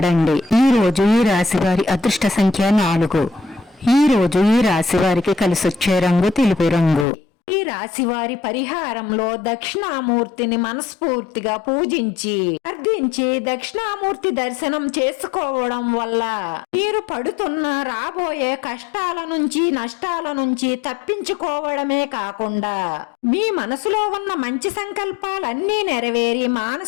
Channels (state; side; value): drops out; right; at 7.1 s